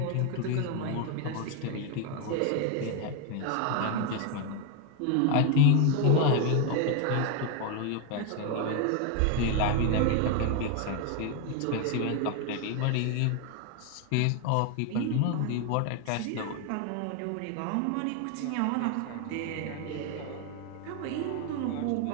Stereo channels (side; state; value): both; different; correlation 0.01